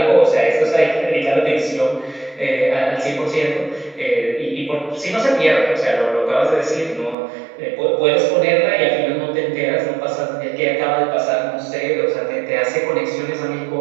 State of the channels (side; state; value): left; drops out; at 7.2 s